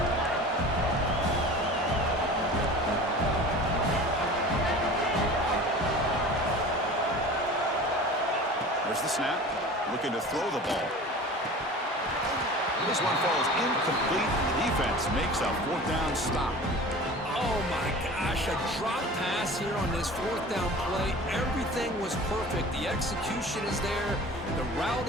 There's the snap. Looking to throw the ball. This one falls incomplete. The defense makes a fourth down stop. Oh my gosh, a drop pass here on this fourth down play. Everything was perfect. The execution is there. The route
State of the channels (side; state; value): both; normal; correlation 0.39